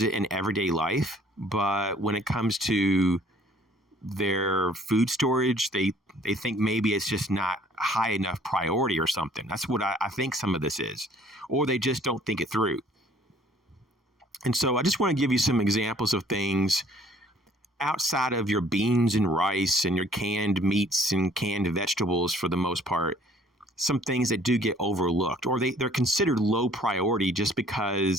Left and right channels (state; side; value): normal; both; correlation 0.57